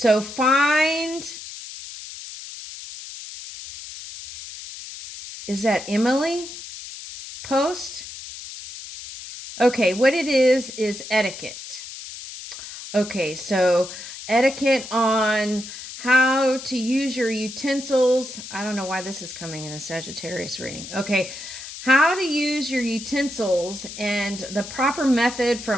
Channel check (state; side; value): noise; left; hiss, 12 dB below the sound